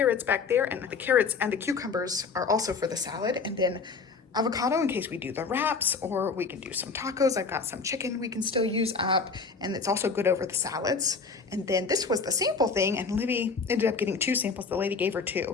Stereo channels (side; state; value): right; quieter; 4.9 dB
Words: back there, and the carrots and the cucumbers are also for the salad, and then avocado in case we do the wraps, or we can do some tacos. I've got some chicken we can still use up, and it's also good over the salads. And then this was the sample thing, and Livy ended up getting 2 samples. The lady gave her